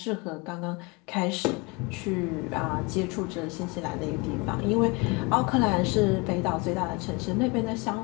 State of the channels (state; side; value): quieter; right; 27.6 dB